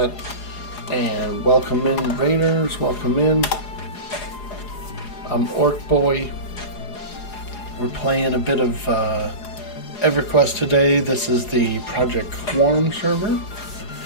And welcome in, raiders. Welcome in. I'm Orkboy. We're playing a bit of EverQuest today. This is the Project Quorum server.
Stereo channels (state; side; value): late; right; 4.8 ms